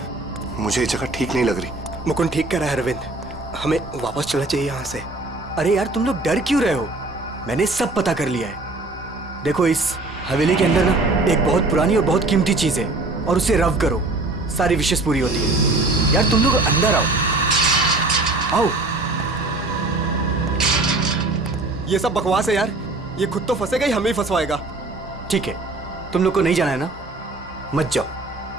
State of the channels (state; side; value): quieter; left; 3.1 dB